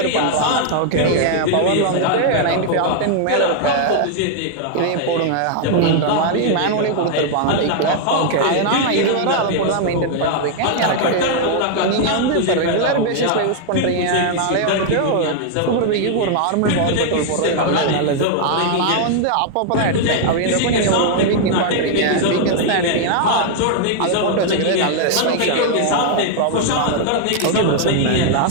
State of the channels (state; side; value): different; both; correlation 0.00